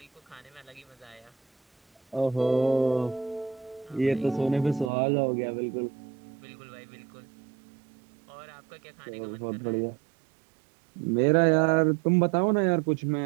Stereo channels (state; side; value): drops out; left; at 4.9 s